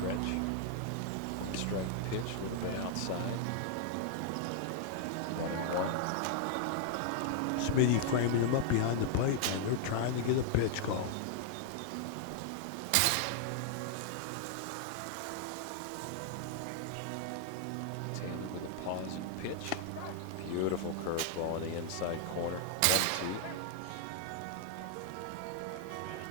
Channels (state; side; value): different; both; correlation 0.00